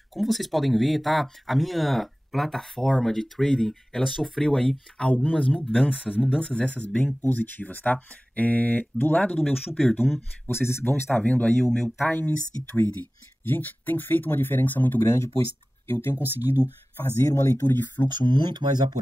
como vocês podem ver, tá? A minha plataforma de trading, ela sofreu aí algumas mudanças essas bem positivas, tá? Do lado do meu Super Doom, vocês vão estar vendo aí o meu Times e Trading. Gente, tem feito uma diferença muito grande, pois eu tenho conseguido fazer uma leitura de fluxo muito mais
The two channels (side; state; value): both; normal; correlation 0.97